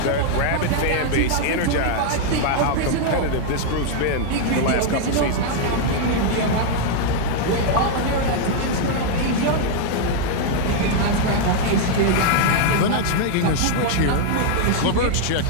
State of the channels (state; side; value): different; both; correlation 0.00